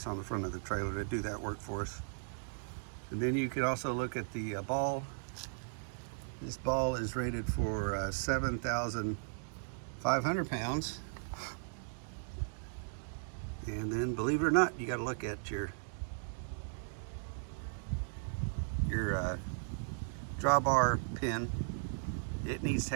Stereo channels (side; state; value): left; silent; digital silence